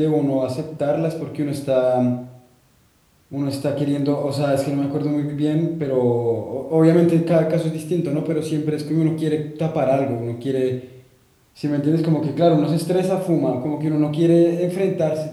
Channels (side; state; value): both; identical; correlation 1.00